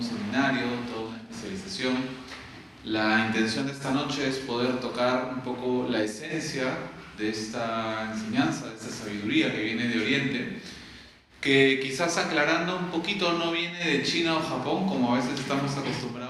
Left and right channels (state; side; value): identical; both; correlation 1.00